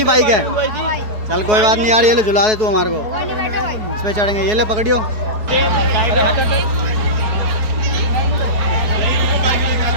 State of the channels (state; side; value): late; left; 4.7 ms